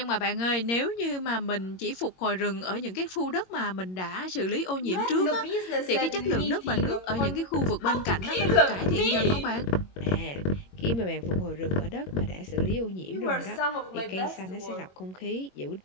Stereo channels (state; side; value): late; right; 22 ms